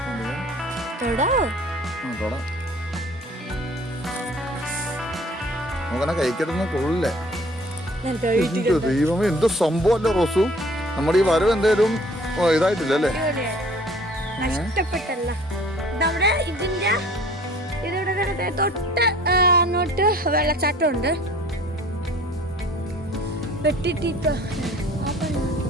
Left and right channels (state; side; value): normal; both; correlation 0.52